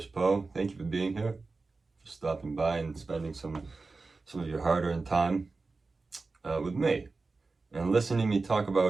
Poe. Thank you for being here, for stopping by and spending some of your hard-earned time with me and listening to me talk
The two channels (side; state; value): left; quieter; 3.9 dB